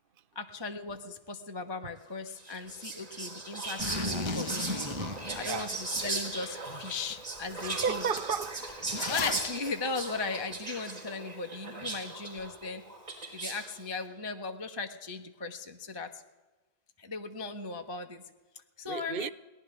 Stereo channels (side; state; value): left; late; 1.9 ms